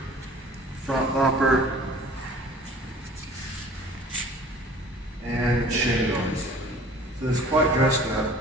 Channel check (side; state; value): both; normal; correlation 0.48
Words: front bumper, and shin guards. So it's quite dressed up.